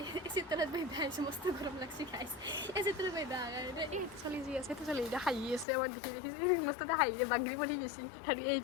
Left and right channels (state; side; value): drops out; right; at 5.7 s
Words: চিত্ৰত বহিবা আহিছোঁ মস্ত গৰম লাগছি খাইছোঁ এই চিত্ৰত বহিবা এই চলি যি আছে চলি এতিয়া হাঁহি আছে মই দেখিছোঁ মস্ততে হাঁহিৰে বাগৰি পৰি গৈছে আৰু